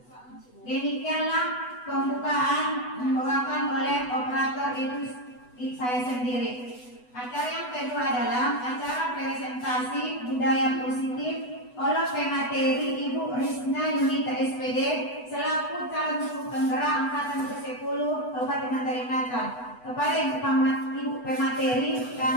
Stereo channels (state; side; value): late; right; 8.1 ms